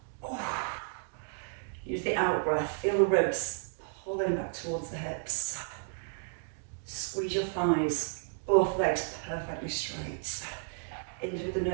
Use the out breath, feel the ribs pulling back towards the hips. Squeeze your thighs, both legs perfectly straight. In through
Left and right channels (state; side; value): silent; left; 56 dB below the other